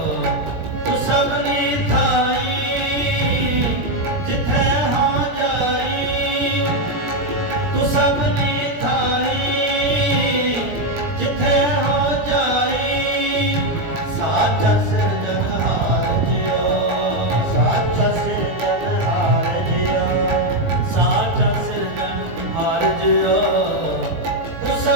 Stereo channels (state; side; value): late; left; 17 ms